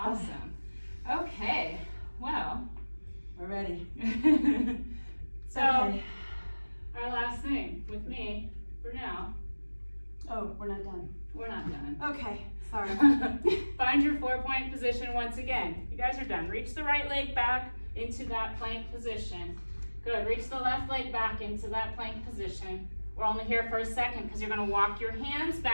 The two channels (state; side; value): inverted; both; correlation -1.00